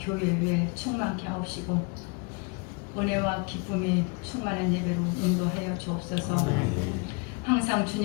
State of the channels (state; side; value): quieter; right; 32.2 dB